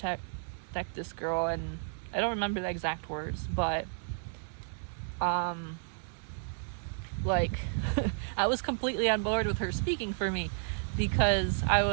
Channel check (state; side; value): silent; left; digital silence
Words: this girl. And I don't remember the exact words, but like I was completely on board with her speaking for me, because I